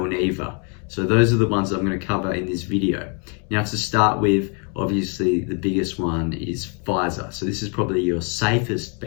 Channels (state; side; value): quieter; right; 37.6 dB